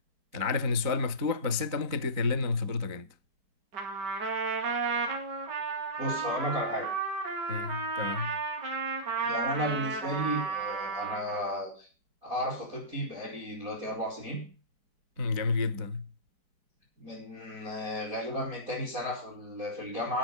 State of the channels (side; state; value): left; late; 4.0 ms